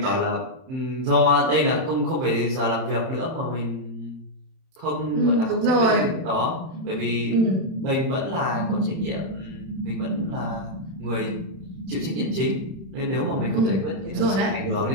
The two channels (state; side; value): late; left; 31 ms